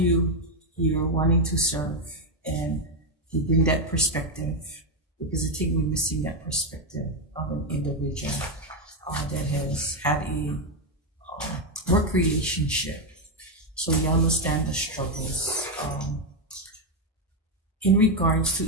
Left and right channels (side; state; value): both; normal; correlation 0.06